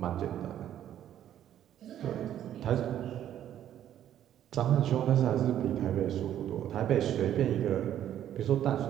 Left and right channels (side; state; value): left; quieter; 11.1 dB